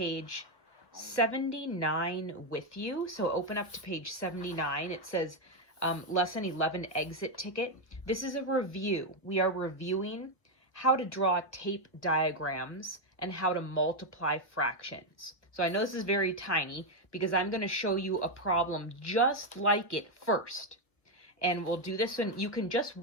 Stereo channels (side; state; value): right; late; 1.0 ms